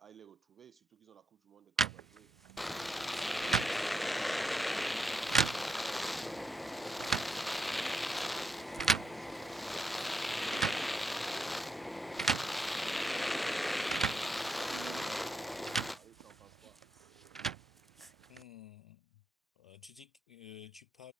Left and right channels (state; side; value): normal; both; correlation 0.82